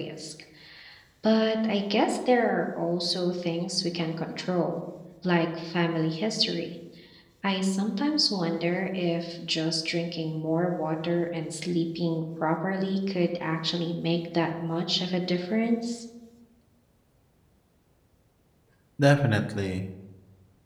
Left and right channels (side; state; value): both; identical; correlation 1.00